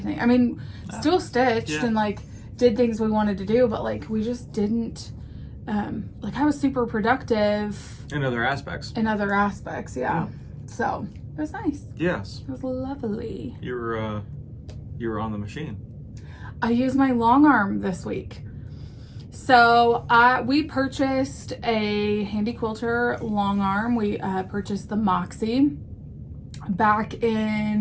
I mean, still stitched and like did things we wanted to do, but like we just didn't, like I was super productive. In other aspects. Yeah. So... It was nice. Yes. It was lovely. You were on the machine. I used my long arm this week. So we purchased a Handy Quilter long arm. We purchased the Moxie back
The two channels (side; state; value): both; identical; correlation 1.00